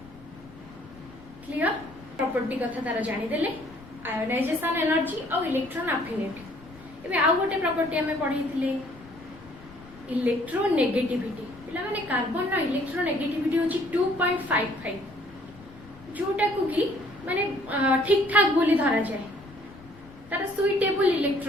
क्लियर प्रॉपर्टी कथा तार जानि देले आयोनाइजेशन एनर्जी और इलेक्ट्रॉन अफिनिटी। एबे आ गोटे प्रॉपर्टी हमें पढैथिले इलेक्ट्रोनेगेटिविटी। पिला माने कार्बन रो इलेक्ट्रोनेगेटिविटी होची 2.55 जोटा को कि माने ठीक ठाक बोली धरा जाए तार सुइटेबल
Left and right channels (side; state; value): left; noise; rumble, 21 dB below the sound